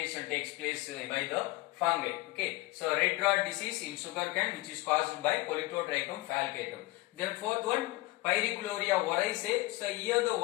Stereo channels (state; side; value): quieter; right; 20.2 dB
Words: takes place by the fungi. Okay, so red rot disease in sugarcane which is caused by Politotrichum falcatum. Then fourth one, Pyricloria oryzae. So here the